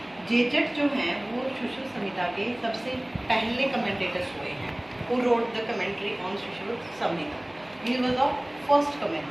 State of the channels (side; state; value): right; noise; hum, 28 dB below the sound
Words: जेजट जो हैं वो सुश्रुत संहिता के सबसे पहले commentators हुए हैं who wrote the commentary on Shushruta Samhita. He was the first